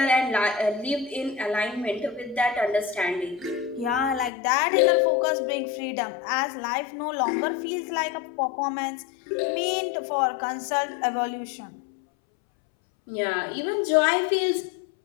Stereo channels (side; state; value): right; drops out; at 4.3 s